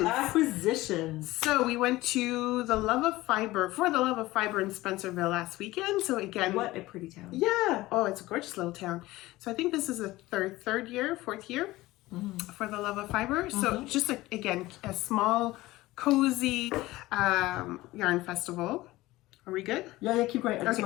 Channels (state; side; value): quieter; right; 18.3 dB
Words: So we went to the Love of Fibre in Spencerville last weekend. So again, what a pretty town. Yeah. Oh, it's a gorgeous little town. So I think this is the fourth year for the Love of Fibre. So just again, a small, cozy yarn festival. Are we good? Yeah, keep going. I just